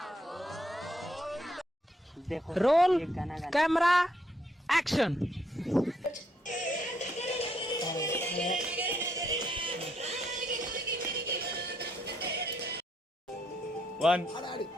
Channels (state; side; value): normal; both; correlation 0.74